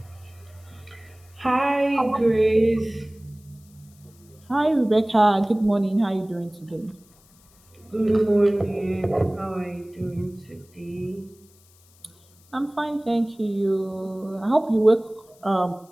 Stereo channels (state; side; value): noise; left; hiss, 30 dB below the sound